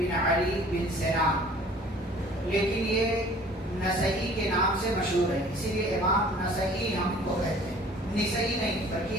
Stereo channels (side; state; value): both; normal; correlation 0.51